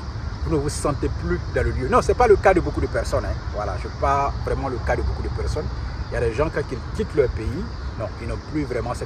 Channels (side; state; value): both; identical; correlation 1.00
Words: vous ne vous sentez plus dans le lieu. Non, ce n'est pas le cas de beaucoup de personnes. Hein. Voilà, je parle vraiment le cas de beaucoup de personnes. Il y a des gens, quand ils quittent leur pays, non, ils n'ont plus vraiment